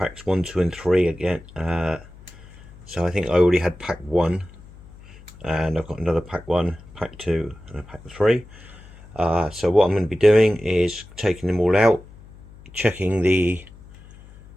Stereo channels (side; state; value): left; noise; hum, 21 dB below the sound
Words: 1, 2 and 3 again. So I think I already had pack 1, and I've got another pack 1, pack 2 and a pack 3. So what I'm going to be doing is taking them all out, checking the